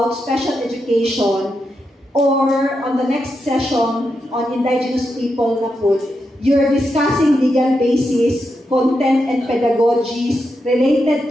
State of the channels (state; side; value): normal; both; correlation 0.85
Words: special education. Or on the next session on indigenous people na po, you're discussing legal basis, content and pedagogies related